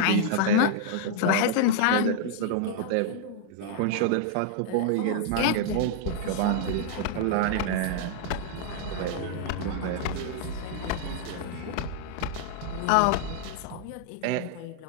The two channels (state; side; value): different; both; correlation -0.01